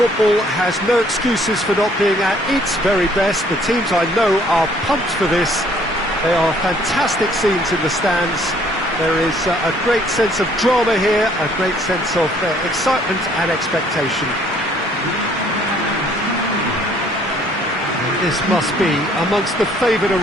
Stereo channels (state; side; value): normal; both; correlation 0.61